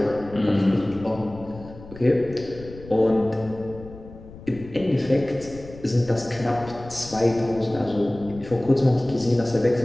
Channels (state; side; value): noise; left; rumble, 17 dB below the sound